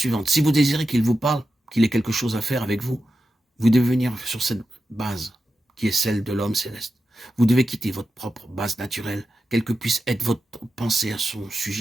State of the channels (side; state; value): both; normal; correlation 0.90